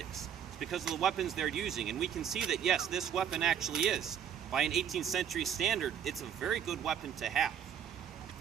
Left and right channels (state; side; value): quieter; left; 8.8 dB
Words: It's because of the weapons they're using. And we can see that, yes, this weapon actually is. By an 18th century standard, it's a very good weapon to have.